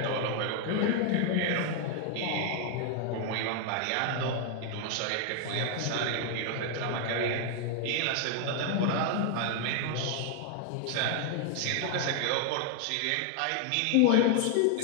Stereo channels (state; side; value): different; both; correlation 0.00